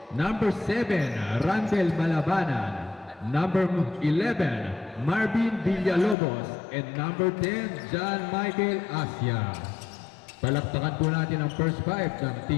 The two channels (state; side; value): drops out; right; at 6.2 s